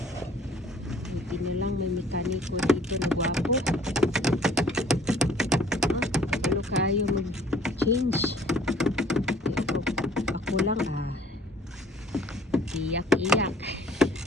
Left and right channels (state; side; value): normal; both; correlation 0.54